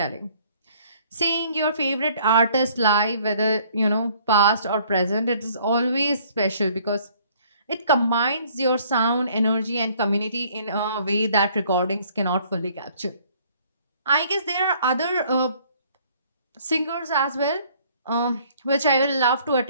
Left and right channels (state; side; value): inverted; both; correlation -0.60